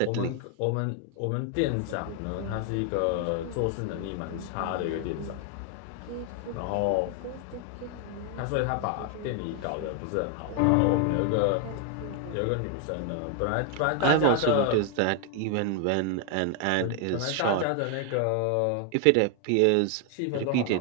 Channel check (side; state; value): both; different; correlation 0.00